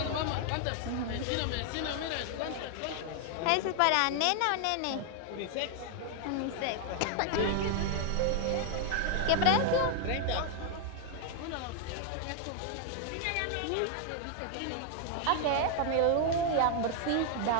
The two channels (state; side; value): different; both; correlation 0.00